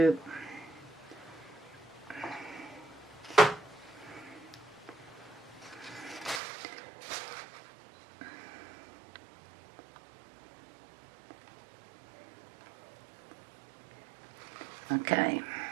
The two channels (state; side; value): drops out; left; at 6.4 s